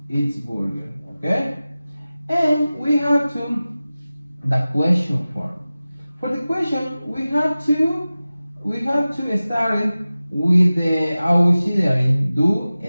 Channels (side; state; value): both; inverted; correlation -0.96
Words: eat burger, okay? And we have the question form. For the question, we have to start it with the auxiliary do